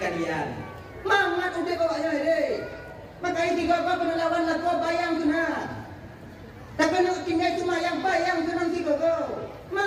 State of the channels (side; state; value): both; identical; correlation 1.00